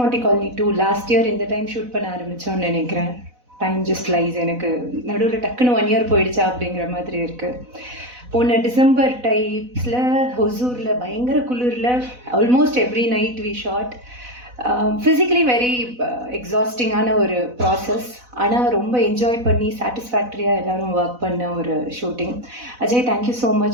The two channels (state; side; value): late; left; 4.0 ms